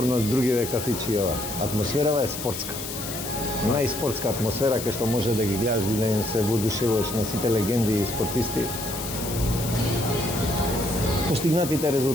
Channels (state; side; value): noise; left; hiss, 7 dB below the sound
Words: од другиве кафичи ова. Атмосферава е спортска. Најспортска атмосфера кај што може да ги гледаш и да им се воодушевуваш на сите легенди и спортисти. Постигнатите